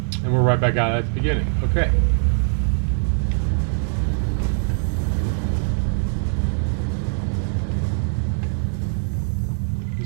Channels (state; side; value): silent; left; digital silence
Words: right back out at the beginning. Okay.